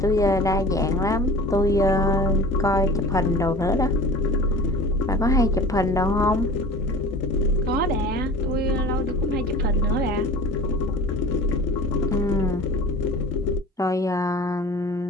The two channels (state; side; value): normal; both; correlation 0.39